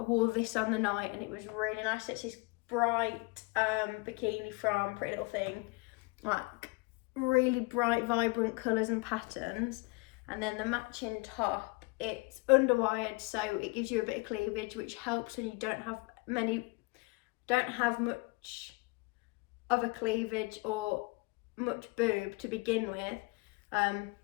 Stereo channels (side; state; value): right; quieter; 26.9 dB